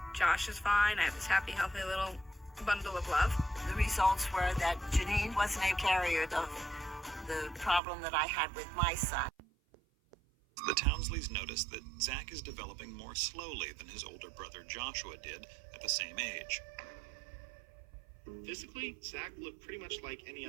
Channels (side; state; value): left; drops out; at 7.8 s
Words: Josh is fine. I have this happy, healthy little bundle of love. The results were that Janine wasn't a carrier of the problem that I had with my son. The Townsleys notice that Zach is developing more slowly than his older brother Joshua did at the same age. Physically, Zach looked pretty much like any